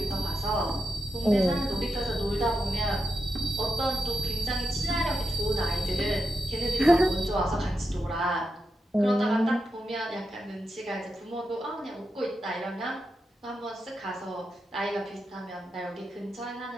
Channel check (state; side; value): normal; both; correlation 0.88